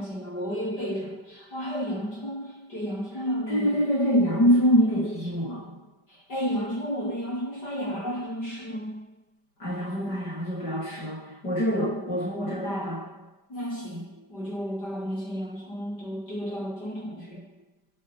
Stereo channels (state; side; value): late; right; 5.1 ms